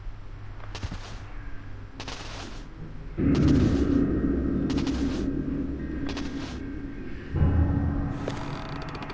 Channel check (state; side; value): identical; both; correlation 1.00